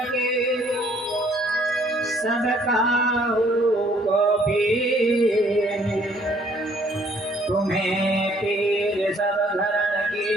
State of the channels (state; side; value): normal; both; correlation 0.62